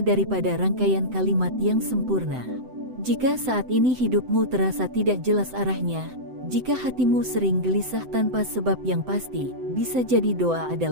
daripada rangkaian kalimat yang sempurna. Jika saat ini hidupmu terasa tidak jelas arahnya, jika hatimu sering gelisah tanpa sebab yang pasti, bisa jadi doa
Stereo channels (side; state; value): left; late; 7.9 ms